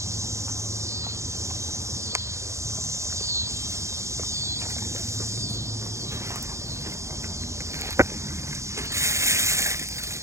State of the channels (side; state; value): left; late; 0.14 ms